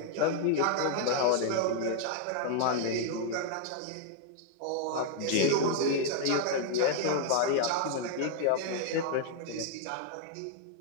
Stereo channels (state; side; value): different; both; correlation 0.00